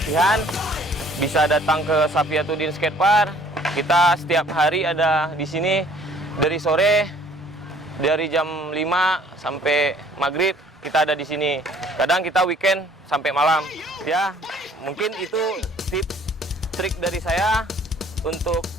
bisa datang ke Safiatuddin Skatepark. Kita setiap hari ada di sini dari sore, dari jam 5 sampai maghrib kita ada di sini. Kadang kita weekend sampai malam. Ya, mungkin itu tips trik dari saya. Untuk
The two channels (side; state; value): both; normal; correlation 0.57